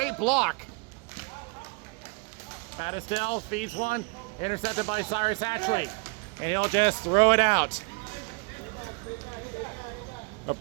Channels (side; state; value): left; quieter; 31.7 dB